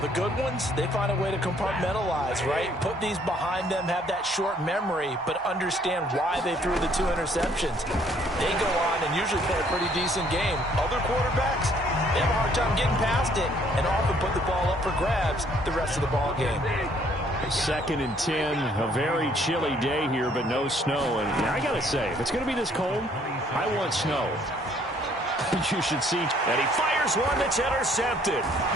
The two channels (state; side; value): normal; both; correlation 0.63